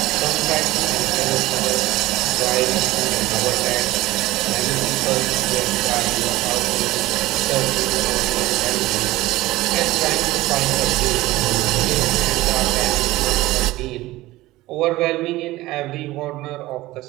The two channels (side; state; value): left; quieter; 18.0 dB